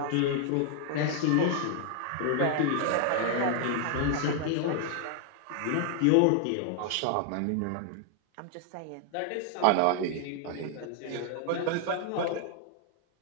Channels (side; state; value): both; different; correlation 0.00